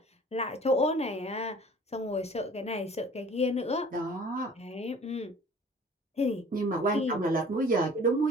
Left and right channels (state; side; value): normal; both; correlation 0.49